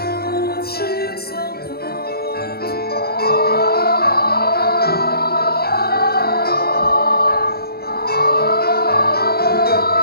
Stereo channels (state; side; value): late; right; 0.45 ms